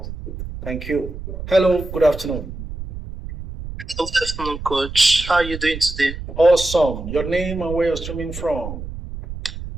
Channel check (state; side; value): noise; right; rumble, 9 dB below the sound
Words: Thank you. Hello, good afternoon. Good afternoon, Coach. How are you doing today? Awesome. Your name and where you're streaming from?